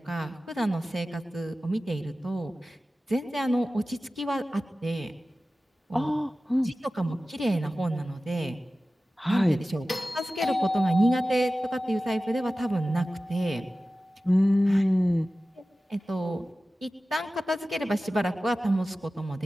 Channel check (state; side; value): normal; both; correlation 0.96